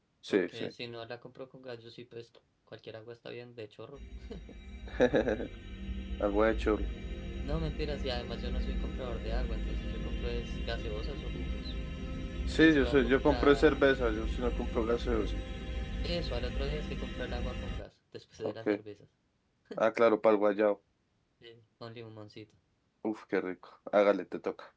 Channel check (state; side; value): identical; both; correlation 1.00